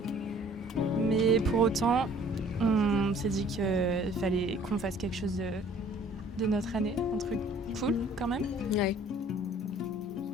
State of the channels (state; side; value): normal; both; correlation 0.55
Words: Mais pour autant, on s'est dit qu'il fallait qu'on fasse quelque chose de notre année, un truc cool quand même. Ouais.